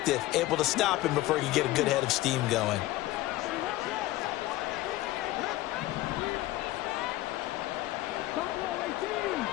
able to stop him before he could get a good head of steam going.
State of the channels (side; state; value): right; quieter; 16.9 dB